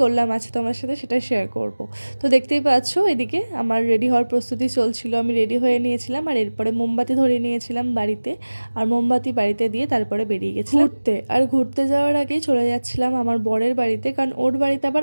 করলাম আছে তোমার সাথে সেটা শেয়ার করব। তো দেখতেই পাচ্ছ এদিকে আমার রেডি হওয়ার প্রস্তুতি চলছিল, আমি রেডি হয়ে নিয়েছিলাম আর এরপরে মোমবাতি ধরিয়ে নিয়েছিলাম বাড়িতে, আর মোমবাতি বাড়িতে দিয়ে তারপরে বেরিয়ে গেছিলাম ঘুরতে। আর ঘুরতে যাওয়ার আগেই চলে যাচ্ছিলাম আমার বরের বাড়িতে, কারণ ওর বাড়িতে আবার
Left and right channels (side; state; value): both; inverted; correlation -1.00